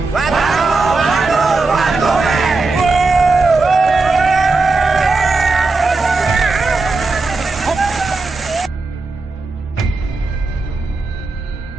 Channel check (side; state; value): left; quieter; 3.6 dB